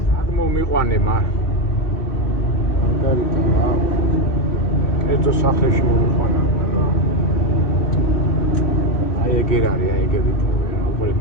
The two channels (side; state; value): right; late; 3.1 ms